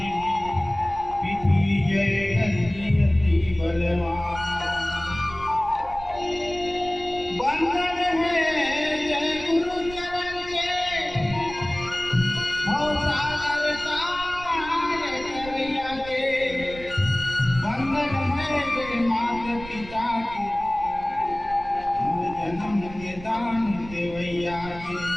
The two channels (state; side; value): noise; right; rumble, 15 dB below the sound